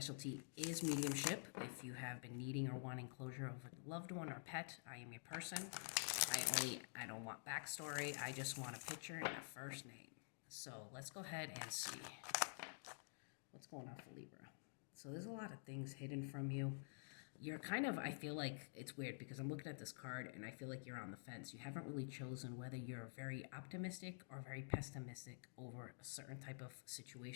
is mediumship. If you have been needing or wanting closure of a loved one or pet, I am your person. I don't want backstory. I just want a picture and a first name. So let's go ahead and see what's going on for Libra. So there's a lot of things hidden from you. You're kind of, I feel like it's weird because I'm looking at this card and I feel like you're on the fence. You haven't really chosen whether you're very optimistic or very pessimistic over a certain type of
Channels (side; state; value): right; silent; digital silence